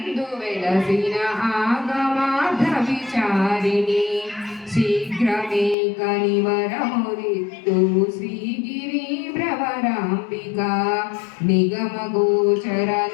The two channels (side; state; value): right; drops out; at 5.8 s